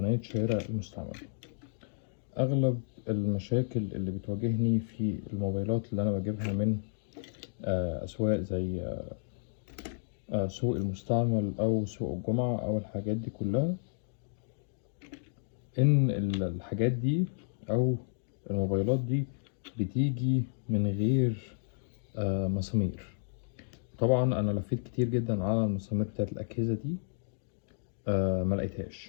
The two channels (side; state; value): right; silent; digital silence